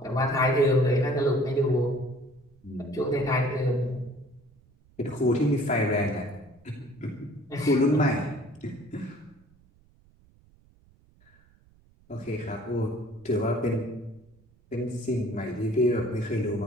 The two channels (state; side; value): noise; right; rumble, 30 dB below the sound